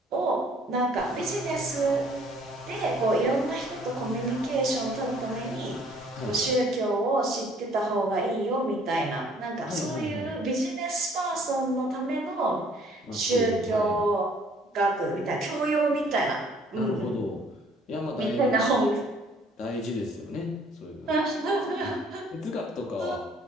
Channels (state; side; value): normal; both; correlation 0.59